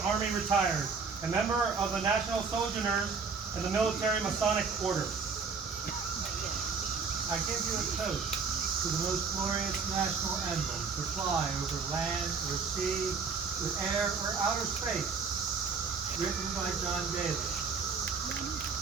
Army retired, a member of the National Sojourners and the Military Masonic Order. I give you a toast to the most glorious national emblem to fly over land or sea, or air or outer space, written by John Daly.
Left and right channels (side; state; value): left; quieter; 5.2 dB